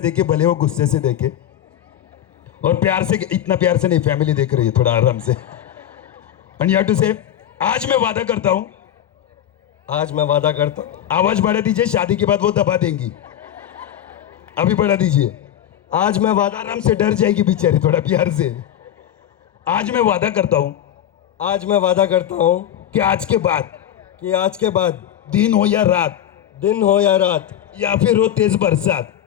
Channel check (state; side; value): quieter; right; 10.8 dB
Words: भले वो गुस्से से देखे। और प्यार से, इतना प्यार से नहीं, फैमिली देख रही है, थोड़ा आराम से। एंड यू हैव टू से, आज मैं वादा करता हूं, आज मैं वादा करता हूं। आवाज बढ़ा दीजिए, शादी के बाद वो दबा देंगी। अभी बढ़ा दीजिए। आज मैं वादा, आराम से, डर जाएगी बेचारी, थोड़ा प्यार से। आज मैं वादा करता हूं, आज मैं वादा करता हूं कि आज के बाद, कि आज के बाद, दिन हो या रात, दिन हो या रात, या फिर हो तेज बरसात,